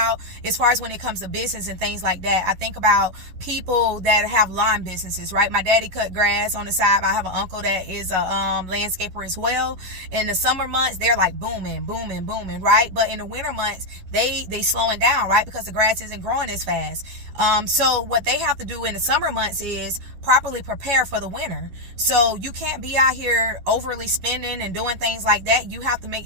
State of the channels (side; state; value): left; late; 11 ms